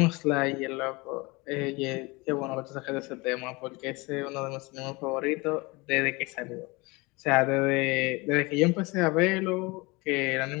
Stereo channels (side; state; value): right; quieter; 25.1 dB